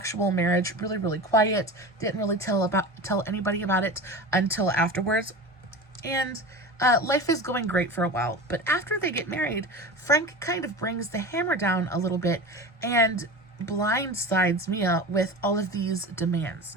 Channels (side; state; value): both; normal; correlation 0.30